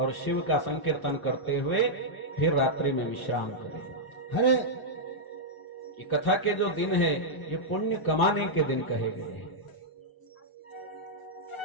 शिव का संकीर्तन करते हुए फिर रात्रि में विश्राम करे। हरे ये कथा के जो दिन है ये पुण्य कमाने के दिन कहे गए हैं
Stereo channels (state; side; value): late; right; 1.3 ms